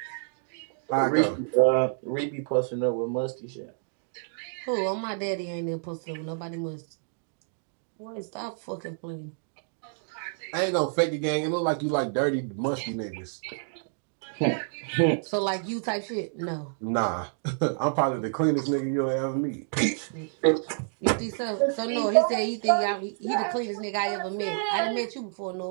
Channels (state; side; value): silent; left; digital silence